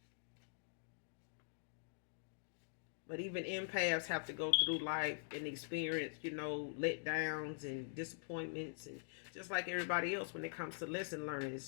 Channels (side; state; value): right; silent; digital silence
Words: But even empaths have to go through life and experience, letdowns and disappointments, and just like everybody else when it comes to lesson learning.